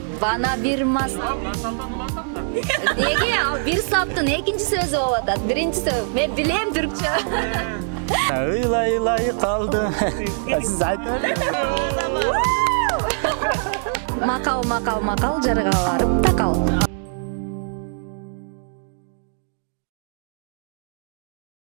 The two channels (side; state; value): left; silent; digital silence